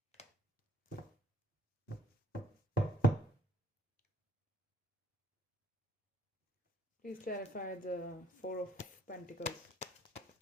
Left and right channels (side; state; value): both; normal; correlation 0.61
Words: Please clarify the Four of Pentacles.